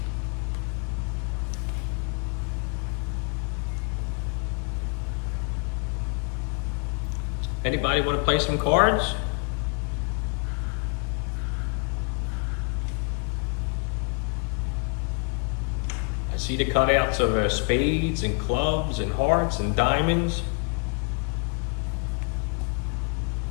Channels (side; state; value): right; quieter; 35.4 dB